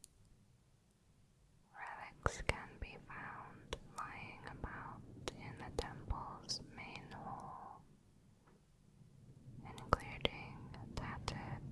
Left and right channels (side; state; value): both; identical; correlation 1.00